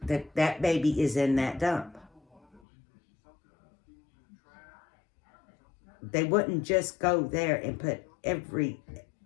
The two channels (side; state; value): right; drops out; at 2.6 s